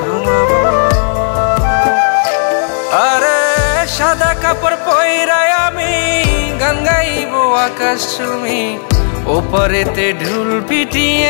ঘুমাবো। আরে সাদা কাপড় পইরায় আমি গান গাইব আকাশ চুমি, ওপারেতে ঢুল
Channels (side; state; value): right; silent; digital silence